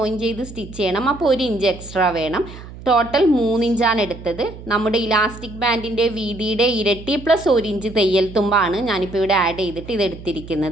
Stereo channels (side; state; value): right; noise; hum, 15 dB below the sound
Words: ചെയ്ത് സ്റ്റിച്ച് ചെയ്യണം. അപ്പോൾ 1 ഇഞ്ച് എക്സ്ട്രാ വേണം. ടോട്ടൽ 3 ഇഞ്ചാണ് എടുത്തത്. നമ്മുടെ ഇലാസ്റ്റിക് ബാൻഡിൻ്റെ വീതിയുടെ ഇരട്ടി പ്ലസ് 1 ഇഞ്ച് തയ്യൽ തുമ്പാണ് ഞാനിപ്പോൾ ഇവിടെ ആഡ് ചെയ്തിട്ട്